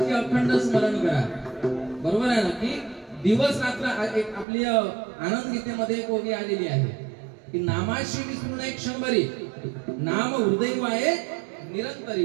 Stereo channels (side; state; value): left; drops out; at 4.5 s